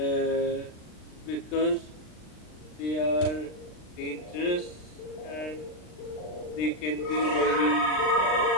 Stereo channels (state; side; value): late; right; 39 ms